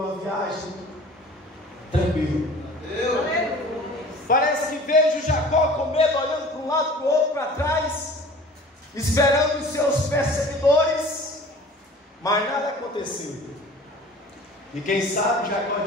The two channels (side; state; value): both; normal; correlation 0.44